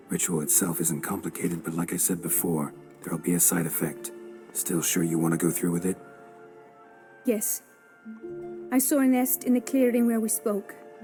Ritual itself isn't complicated, but like I said before, there'll be a side effect. Still sure you want to go through with it? Yes. I saw a nest in the clearing where we spoke.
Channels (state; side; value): identical; both; correlation 1.00